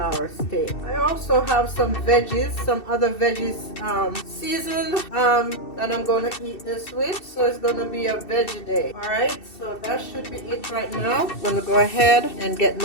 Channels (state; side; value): late; right; 2.7 ms